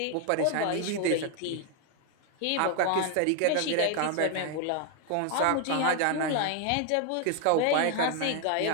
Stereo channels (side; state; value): both; different; correlation 0.00